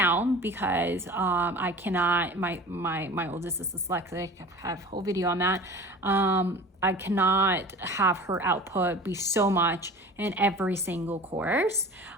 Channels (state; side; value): normal; both; correlation 0.39